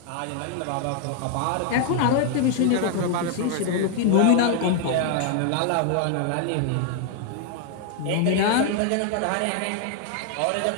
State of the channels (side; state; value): both; different; correlation 0.00